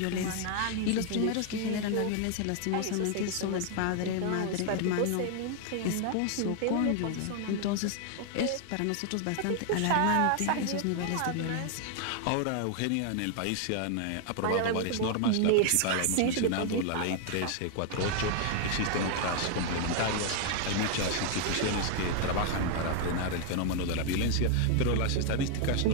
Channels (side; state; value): both; different; correlation 0.00